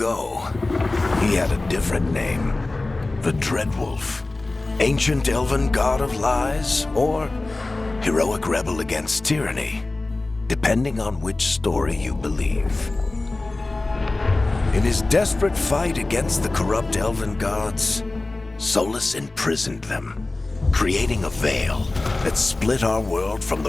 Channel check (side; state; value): right; quieter; 3.1 dB